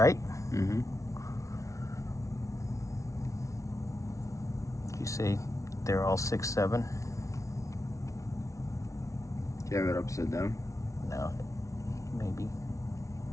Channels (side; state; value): right; late; 0.15 ms